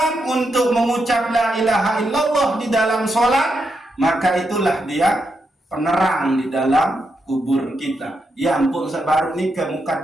untuk mengucap la ilaha illallah di dalam sholat, maka itulah dia penerang di dalam kubur kita. Ya ampun sebaru nikah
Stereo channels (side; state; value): both; normal; correlation 0.83